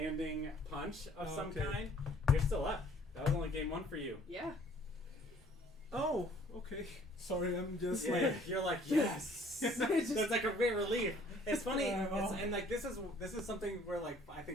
punch of some Okay. kind. You're still up. That was only game 1 for you. Yeah. Oh, okay. Sorry, I'm just Yeah, like... you're like yes. There's like a great relief. It's funny, and like this is something where like I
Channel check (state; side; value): normal; both; correlation 0.57